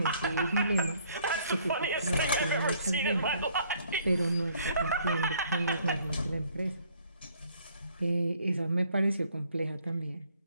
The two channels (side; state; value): both; inverted; correlation -0.63